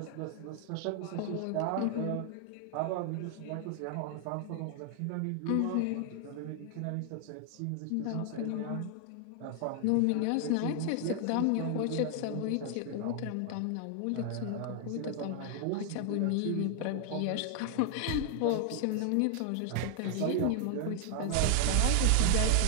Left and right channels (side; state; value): both; different; correlation 0.00